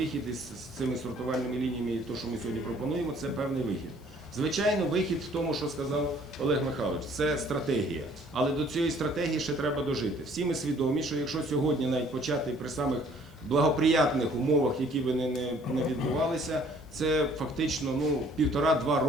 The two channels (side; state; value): left; noise; hiss, 30 dB below the sound